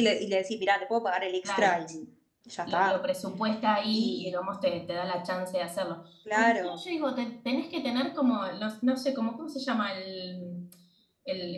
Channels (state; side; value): identical; both; correlation 1.00